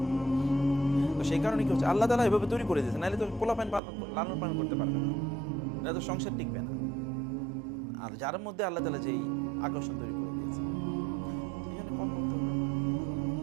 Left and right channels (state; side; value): drops out; left; at 3.8 s